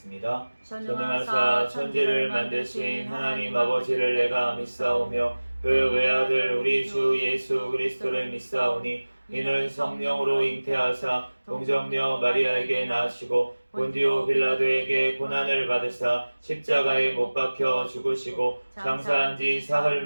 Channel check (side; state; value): both; inverted; correlation -1.00